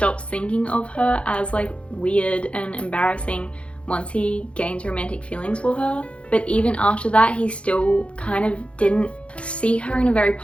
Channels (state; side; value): late; right; 0.060 ms